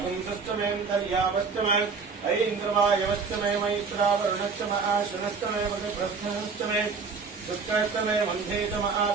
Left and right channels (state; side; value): quieter; left; 5.1 dB